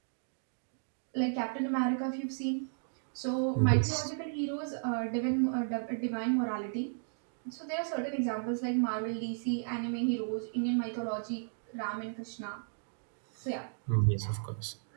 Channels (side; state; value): left; silent; digital silence